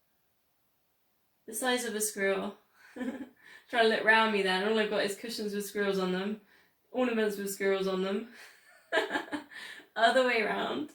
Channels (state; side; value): identical; both; correlation 1.00